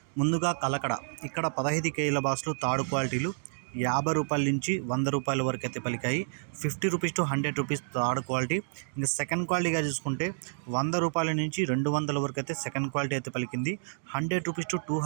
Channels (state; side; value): silent; left; digital silence